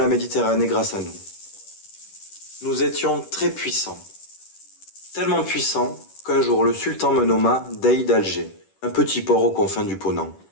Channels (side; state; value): right; late; 10 ms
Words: Méditerranée grâce à nous. Nous étions très puissants. Tellement puissants qu'un jour le sultan me nomma Dey d'Alger, un petit port aux confins du Ponant.